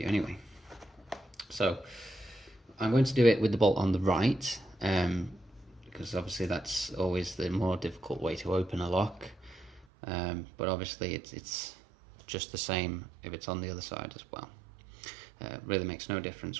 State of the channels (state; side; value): drops out; left; at 9.9 s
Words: anyway. So I'm going to do it with the bolt on the right, because obviously that's always the more difficult way to open a lock. But obviously it's just the same if it's on the other side as well. Really makes no